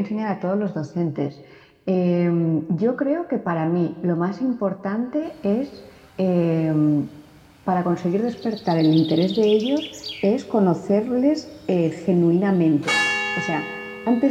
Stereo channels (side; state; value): both; identical; correlation 1.00